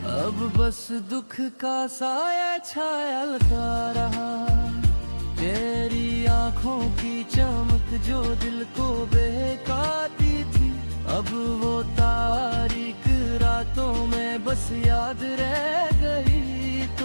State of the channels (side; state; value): both; inverted; correlation -1.00